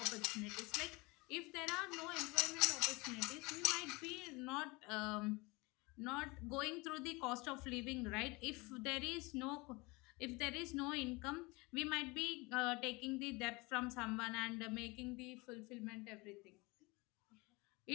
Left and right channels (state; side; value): quieter; right; 25.1 dB